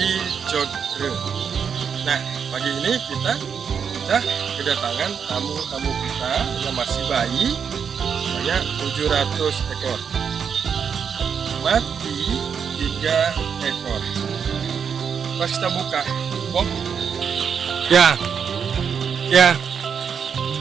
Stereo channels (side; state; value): left; quieter; 7.0 dB